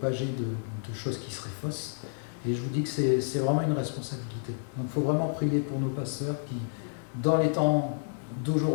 de choses qui seraient fausses. Et je vous dis que c'est vraiment une responsabilité. Donc il faut vraiment prier pour nos pasteurs qui, dans les temps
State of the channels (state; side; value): silent; right; digital silence